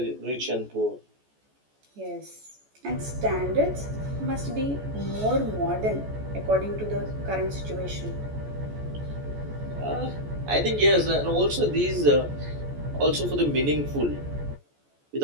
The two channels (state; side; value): late; left; 14 ms